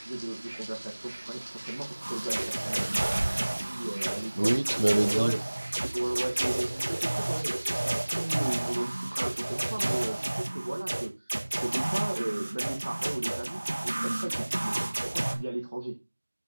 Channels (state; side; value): inverted; both; correlation -1.00